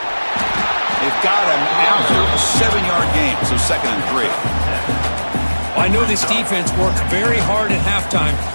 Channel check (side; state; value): both; inverted; correlation -1.00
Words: They've got him after a 7-yard gain, so 2nd and 3. I know this defense worked very hard at halftime